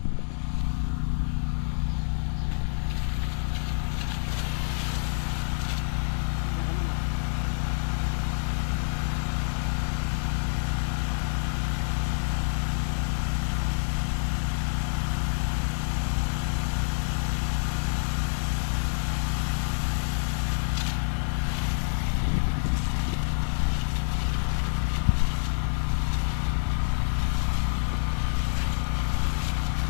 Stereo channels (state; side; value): silent; right; 60 dB below the other